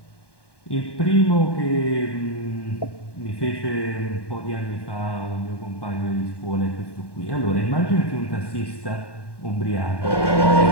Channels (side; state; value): right; late; 1.1 ms